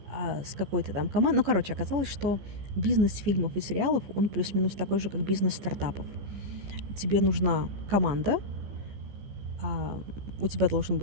с какой-то там командой. Ну, короче, оказалось, что бизнес фильмов и сериалов, он плюс-минус такой же, как бизнес стартапов. Тебе нужна команда, у тебя должен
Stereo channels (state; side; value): late; left; 15 ms